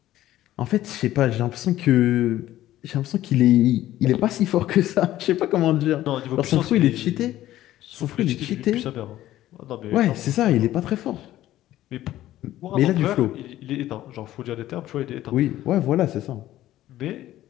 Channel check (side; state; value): right; quieter; 14.1 dB